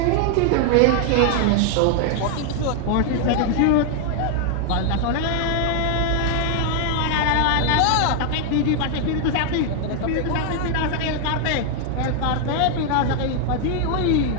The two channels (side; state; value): both; different; correlation 0.00